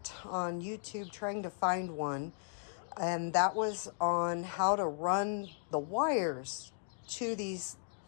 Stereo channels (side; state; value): right; silent; digital silence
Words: on YouTube trying to find one, and that was on how to run the wires to these